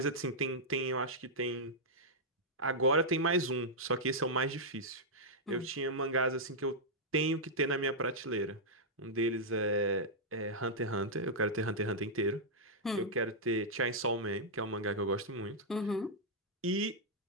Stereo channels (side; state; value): both; normal; correlation -0.07